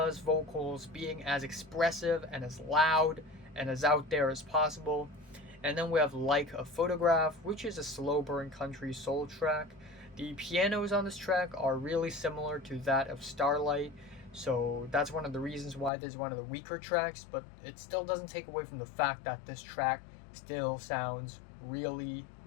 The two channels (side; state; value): right; drops out; at 15.9 s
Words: vocals being as expressive and as loud and as out there as possible. And then we have Like a Photograph, which is a slow burn country soul track. The pianos on this track are really similar to that of Starlight, so that's one of the reasons why this is one of the weaker tracks, but it still doesn't take away from the fact that this track still sounds really